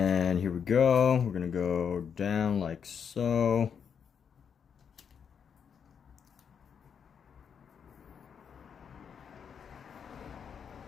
here we go. We're gonna go down like so.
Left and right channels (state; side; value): quieter; right; 7.2 dB